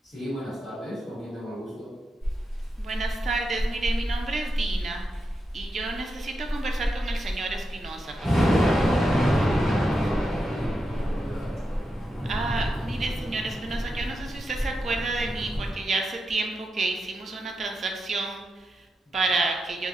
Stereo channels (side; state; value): both; normal; correlation 0.87